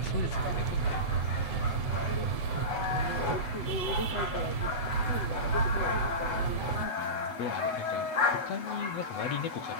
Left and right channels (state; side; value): late; right; 7.9 ms